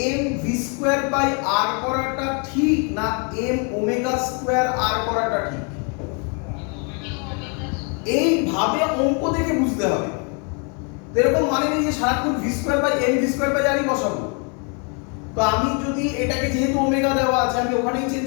m v square by r করাটা ঠিক না m ওমেগা স্কয়ার r করাটা ঠিক? এইভাবে অঙ্ক দেখে বুঝতে হবে। এরকম মানে নেই যে সারাক্ষণ v square by m v square by r ই বসাবো। তো আমি যদি এটাকে যেহেতু ওমেগা দেওয়া আছে আমি ওখানেই চেঞ্জ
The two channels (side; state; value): right; quieter; 36.7 dB